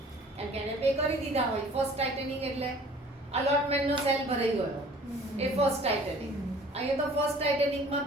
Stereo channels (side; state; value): both; normal; correlation 0.50